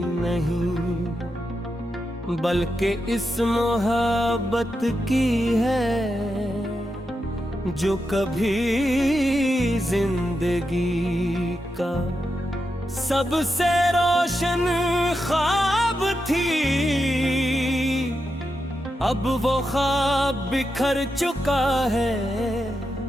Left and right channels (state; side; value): normal; both; correlation 0.87